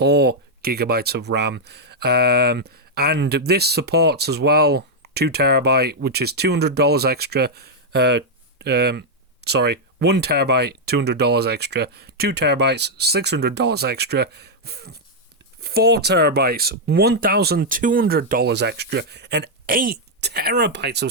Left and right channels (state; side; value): normal; both; correlation -0.03